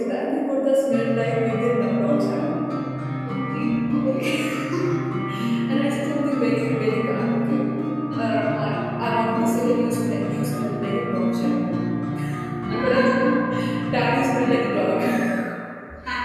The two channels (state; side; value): identical; both; correlation 1.00